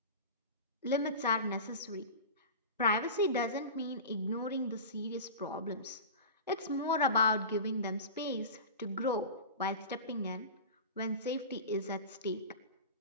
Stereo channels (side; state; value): both; inverted; correlation -0.31